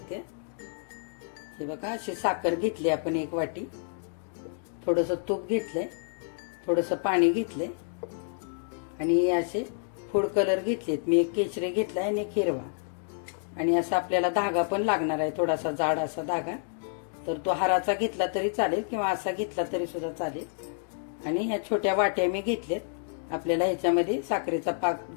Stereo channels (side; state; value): right; silent; digital silence